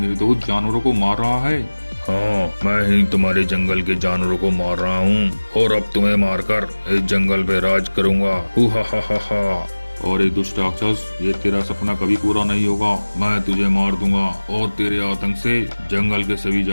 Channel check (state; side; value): inverted; both; correlation -1.00